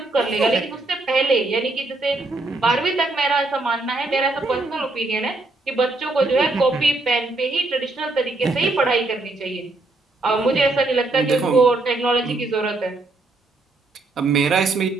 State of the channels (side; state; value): left; quieter; 3.1 dB